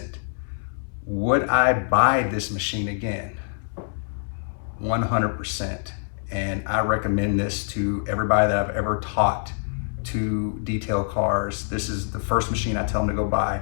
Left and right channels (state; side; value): silent; right; 62 dB below the other